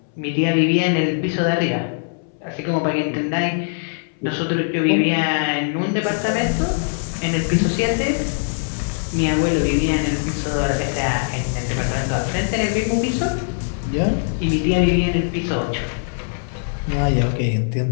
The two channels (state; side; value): silent; right; 65 dB below the other